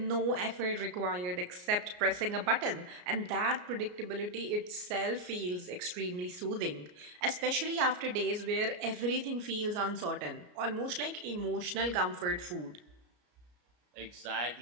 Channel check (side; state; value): left; late; 33 ms